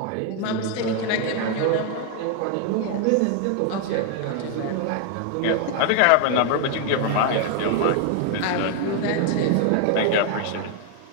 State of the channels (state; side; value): different; both; correlation 0.00